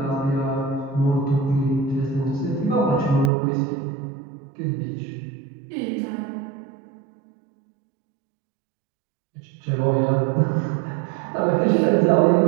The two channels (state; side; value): drops out; left; at 3.3 s